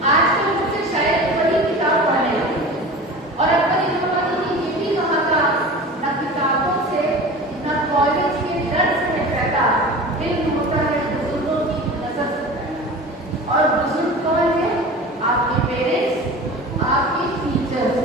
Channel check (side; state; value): both; normal; correlation 0.35